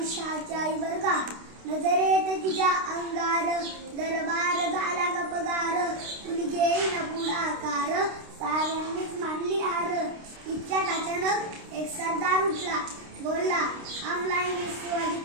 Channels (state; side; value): late; left; 29 ms